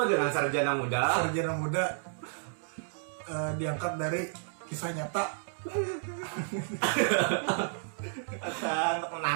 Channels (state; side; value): silent; left; digital silence